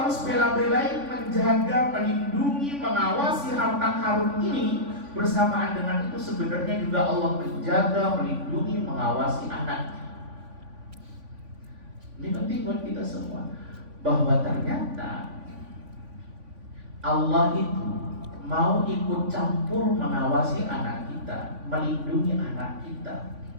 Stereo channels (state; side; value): late; left; 3.5 ms